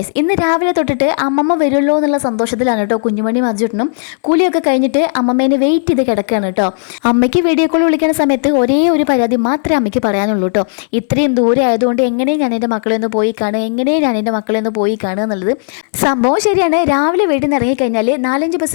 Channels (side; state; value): right; silent; digital silence